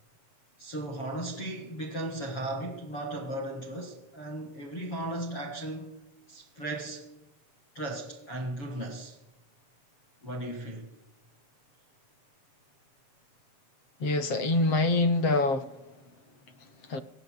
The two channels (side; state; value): right; late; 7.5 ms